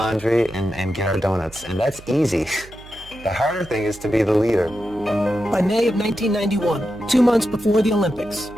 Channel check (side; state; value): right; noise; hum, 20 dB below the sound